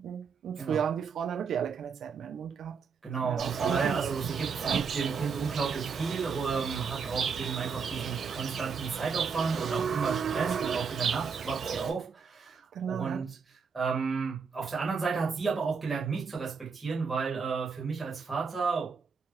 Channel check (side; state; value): left; quieter; 5.7 dB